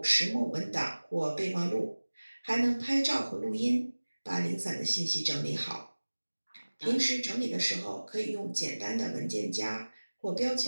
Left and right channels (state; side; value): inverted; both; correlation -1.00